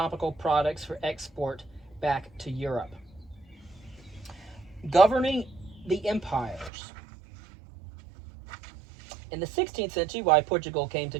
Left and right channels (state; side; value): drops out; left; at 6.7 s